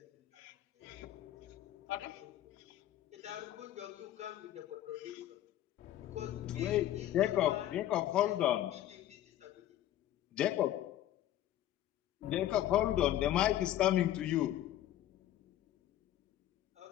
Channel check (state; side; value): quieter; right; 12.8 dB